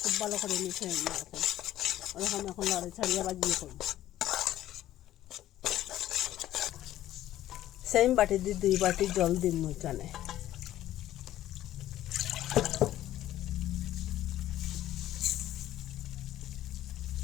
খুব ভালো করে মিশিয়ে নিয়ে এখন ওরকম এখন লড়াই ছাড়িয়ে বাজিয়ে করবো। সেম বাটি দিয়ে 2 বাটি জল দিন এখানে।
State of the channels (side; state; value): right; quieter; 13.4 dB